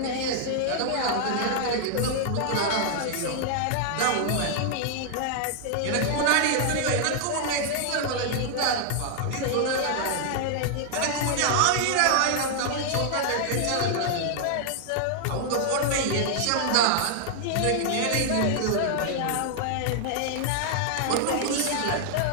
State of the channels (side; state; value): both; different; correlation 0.00